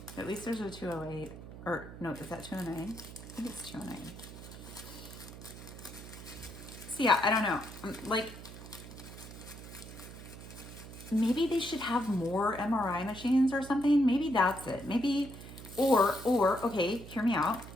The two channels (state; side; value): noise; right; hum, 13 dB below the sound